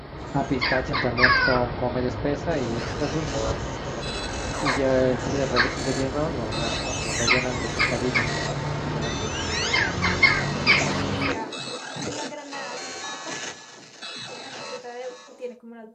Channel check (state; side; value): identical; both; correlation 1.00